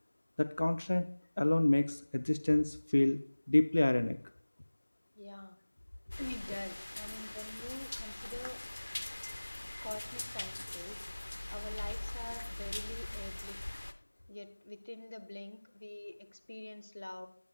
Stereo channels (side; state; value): both; inverted; correlation -1.00